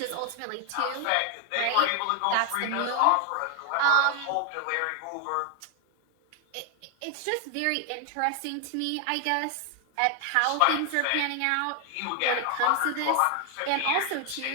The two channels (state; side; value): different; both; correlation 0.00